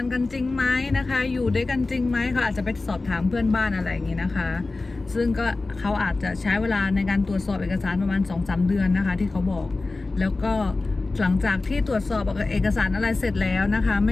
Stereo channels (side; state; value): right; quieter; 3.4 dB